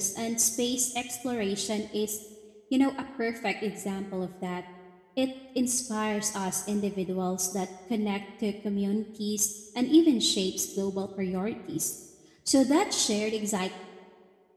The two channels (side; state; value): both; identical; correlation 1.00